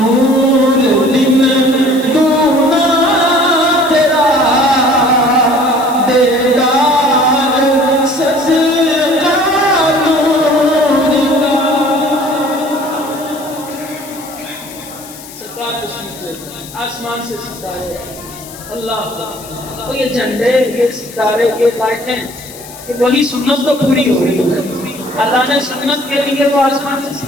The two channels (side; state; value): left; noise; hiss, 17 dB below the sound